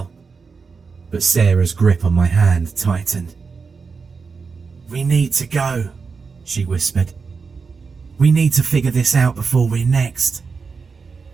but Sarah's grip on my hand tightened. We need to go, she whispered. We need to figure this out before we're next.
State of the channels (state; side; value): quieter; left; 5.1 dB